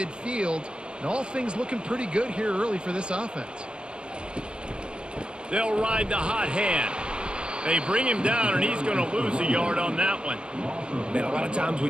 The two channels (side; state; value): left; late; 0.049 ms